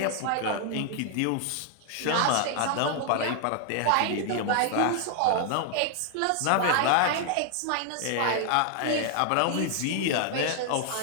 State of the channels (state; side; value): different; both; correlation 0.00